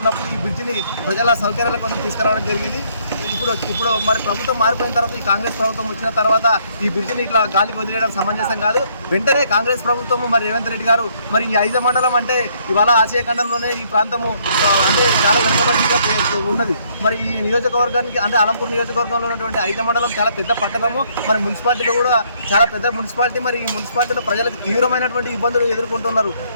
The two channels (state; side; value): inverted; both; correlation -0.67